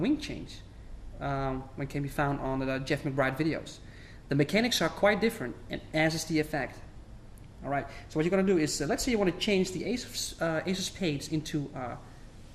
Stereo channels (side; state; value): both; identical; correlation 1.00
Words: change, when can be found on the Jeff McBride videos. The mechanics are quite different, and as is the effect. Alright, so what you're going to do is, let's say you want to change the ace of spades into